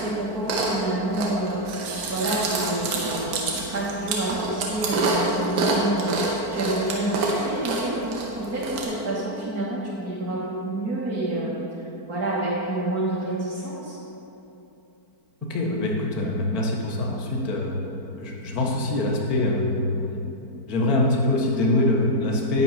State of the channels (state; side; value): late; left; 4.5 ms